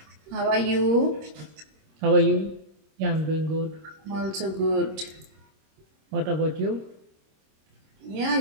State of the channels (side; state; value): left; late; 26 ms